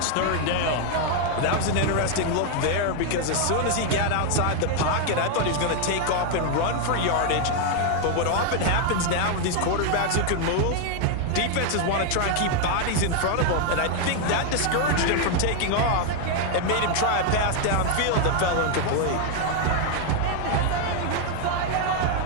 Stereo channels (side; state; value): both; different; correlation 0.01